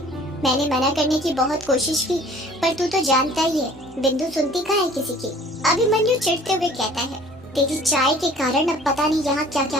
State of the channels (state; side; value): normal; both; correlation 0.51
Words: मैंने मना करने की बहुत कोशिश की, पर तू तो जानता ही है बिंदु सुनती कहाँ है किसी की। अभिमन्यु चिढ़ते हुए कहता है, तेरी चाय के कारण अब पता नहीं यहाँ क्या क्या